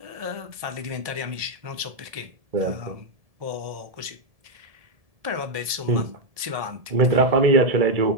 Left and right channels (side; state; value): left; late; 1.7 ms